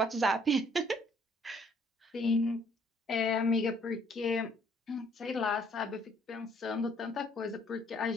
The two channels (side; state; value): both; normal; correlation 0.63